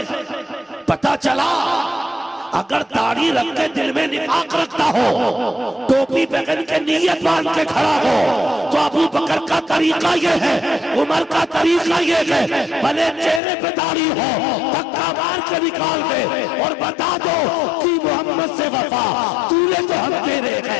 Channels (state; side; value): drops out; right; at 13.4 s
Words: پتہ چلا اگر داڑھی رکھ کے دل میں نفاق رکھتا ہو، ٹوپی پہن کے نیت باندھ کے کھڑا ہو، تو ابو بکر کا طریقہ یہ ہے، عمر کا طریقہ یہ ہے، بھلے چہرے پہ داڑھی ہو دھکا مار کے نکال دے اور بتا دو کہ محمد سے وفا تو نے تو ہم تیرے